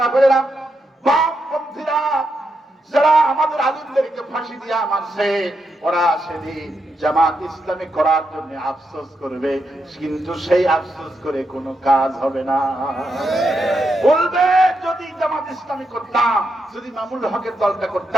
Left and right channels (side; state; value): both; normal; correlation 0.83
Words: বামপন্থীরা যারা আমাদের আলিমদেরকে ফাঁসি দিয়া মারছে, ওরা সেদিন জামাত ইসলামী করার জন্য আফসোস করবে, কিন্তু সেই আফসোস করে কোনো কাজ হবে না। বলবে যদি জামাত ইসলামী করতাম, যদি মামুনুল হকের দলটা